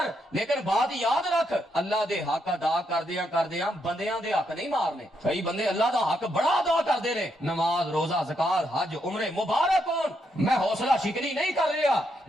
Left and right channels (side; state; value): both; normal; correlation 0.79